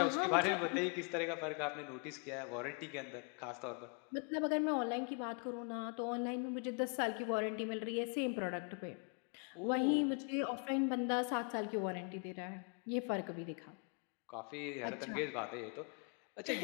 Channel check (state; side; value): quieter; right; 38.2 dB